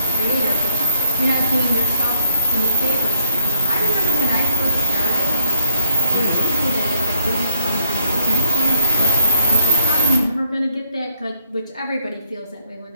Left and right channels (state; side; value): inverted; both; correlation -0.69